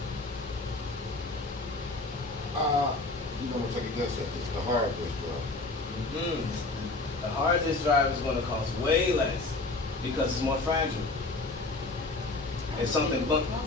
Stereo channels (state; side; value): quieter; right; 3.3 dB